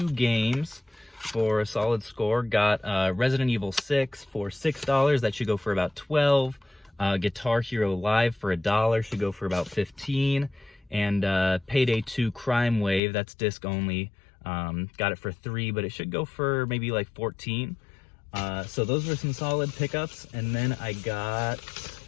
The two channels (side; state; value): right; drops out; at 13.0 s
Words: games for a solid score. Got Resident Evil 6 for $6. That should go for about 12. Guitar Hero Live for $1 should go for about 15. And Payday 2 Crime Wave, that's disc only, got it for 3, but it should go for maybe like 14. So those were some solid pickups. And then I got